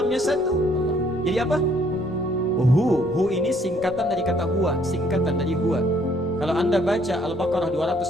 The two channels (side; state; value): both; normal; correlation 0.64